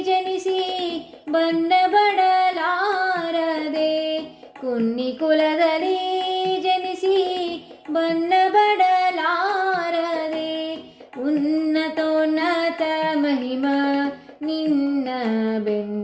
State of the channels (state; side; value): identical; both; correlation 1.00